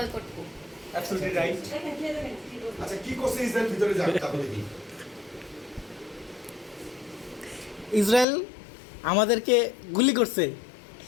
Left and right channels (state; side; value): drops out; right; at 8.2 s